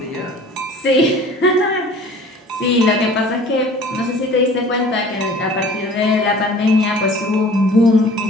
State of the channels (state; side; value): normal; both; correlation 0.47